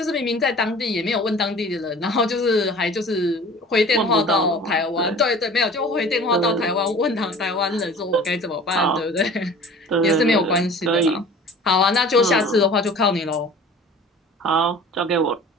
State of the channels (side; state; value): both; normal; correlation 0.43